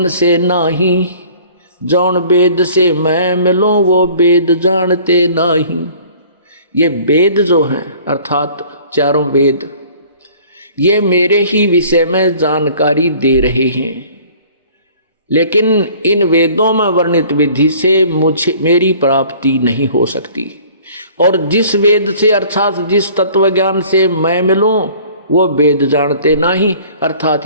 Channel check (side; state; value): both; inverted; correlation -0.51